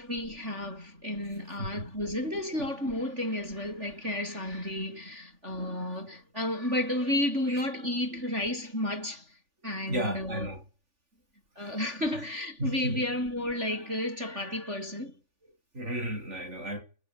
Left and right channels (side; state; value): left; late; 3.4 ms